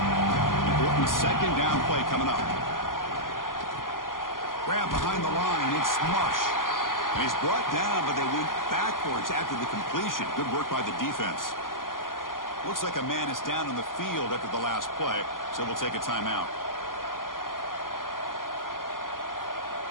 Important second down play coming up. Grab behind the line, it's Marsh. And he's brought down, but they went backwards after the completion. Good work by the defense. Looks like a man is down on the field after the last play, so we'll take a timeout.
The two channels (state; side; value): late; right; 0.91 ms